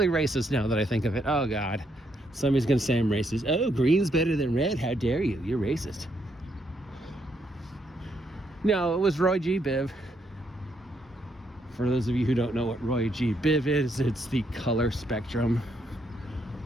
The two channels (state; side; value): normal; both; correlation 0.75